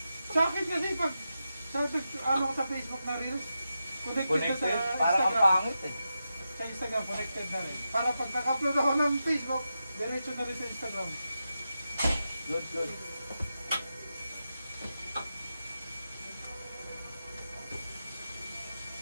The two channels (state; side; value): inverted; both; correlation -0.89